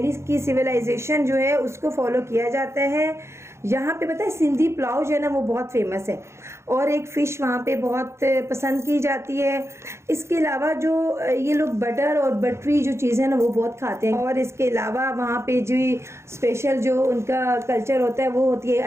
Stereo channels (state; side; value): late; left; 0.13 ms